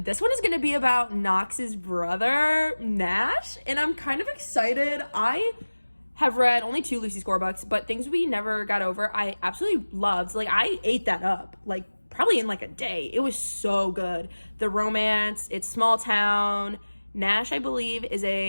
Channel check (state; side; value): inverted; both; correlation -1.00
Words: this one is going to be about Knox's brother, Nash. And I'm kind of excited. I have read only 2 Lucy Score books, but Things We Never Got Over, I absolutely loved. Like, I ate that up. Like, probably in like a day. It was so good. The romance, it's small town. Nash, I believe, is